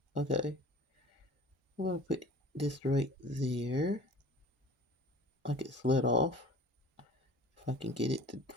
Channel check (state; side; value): normal; both; correlation 0.44